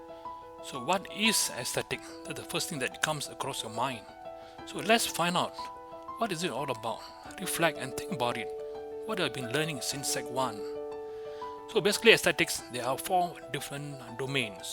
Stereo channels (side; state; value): both; identical; correlation 1.00